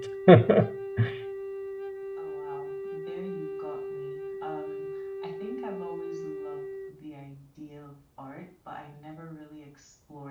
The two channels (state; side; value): identical; both; correlation 1.00